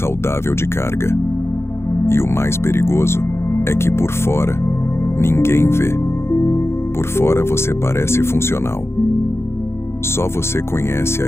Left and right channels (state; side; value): late; right; 0.12 ms